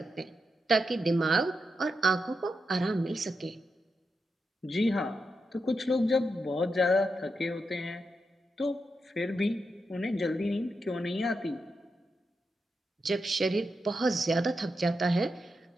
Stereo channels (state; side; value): normal; both; correlation 0.86